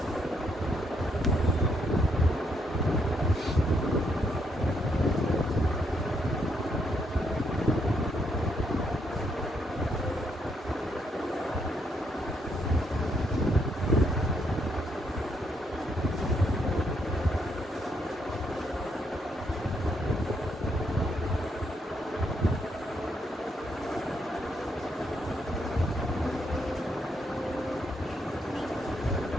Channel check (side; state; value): both; normal; correlation 0.75